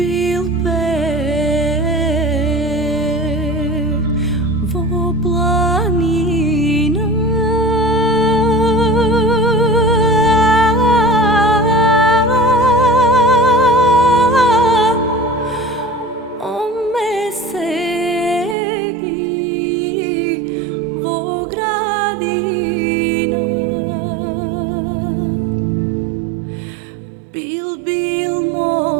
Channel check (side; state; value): left; drops out; at 18.6 s